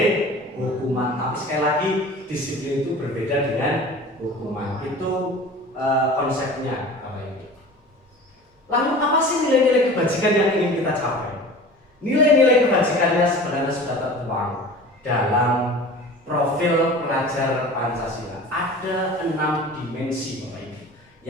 hukuman, tapi sekali lagi disiplin itu berbeda dengan hukuman. Itu konsepnya. Lalu apa sih nilai-nilai kebajikan yang ingin kita capai? Nilai-nilai kebajikannya sebenarnya sudah tertuang dalam profil pelajar Pancasila. Ada 6 dimensi Bapak Ibu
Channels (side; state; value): both; normal; correlation 0.39